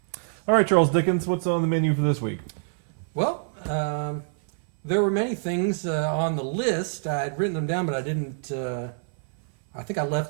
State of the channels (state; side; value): silent; left; 59 dB below the other